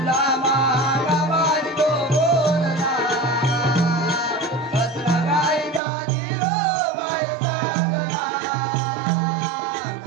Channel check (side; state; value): left; drops out; at 5.8 s